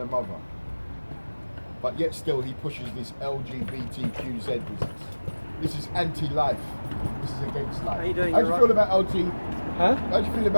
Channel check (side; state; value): both; inverted; correlation -1.00